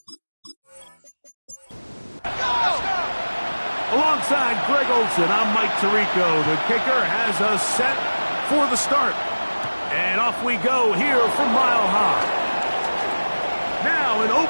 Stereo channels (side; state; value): both; inverted; correlation -1.00